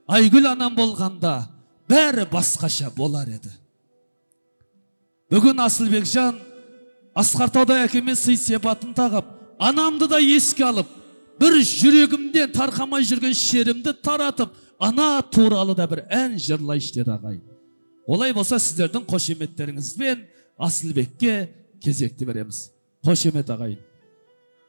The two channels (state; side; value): inverted; both; correlation -1.00